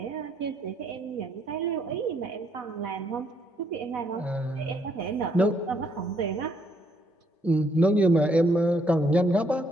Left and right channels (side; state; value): both; normal; correlation 0.70